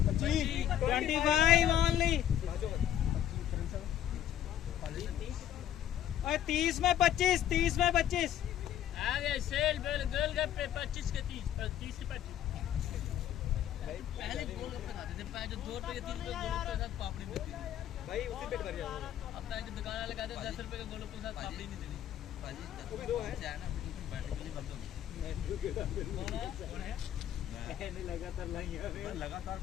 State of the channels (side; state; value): right; quieter; 10.9 dB